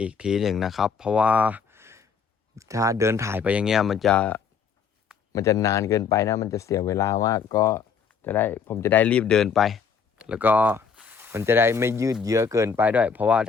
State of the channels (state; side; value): quieter; right; 6.1 dB